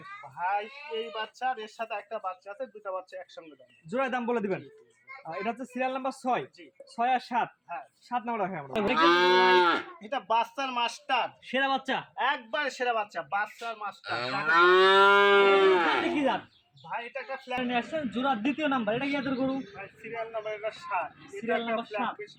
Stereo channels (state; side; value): identical; both; correlation 1.00